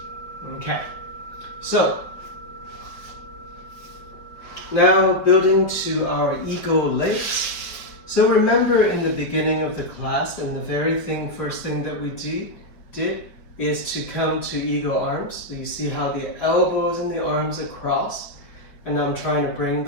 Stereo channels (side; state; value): right; late; 5.0 ms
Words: Okay. So, now building to our ego legs. So remember in the beginning of the class, and the very first thing that we did is to come to ego arms. So you see how the elbows and the arms are crossed, and I'm trying to bring